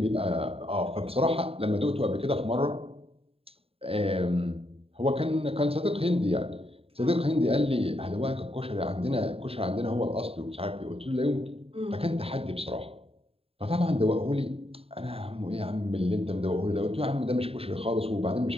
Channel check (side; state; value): left; late; 0.28 ms